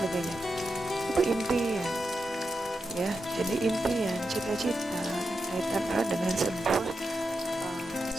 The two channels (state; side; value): normal; both; correlation 0.87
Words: Itu impian, ya. Jadi impian, cita-cita kaitan erat dengan sebuah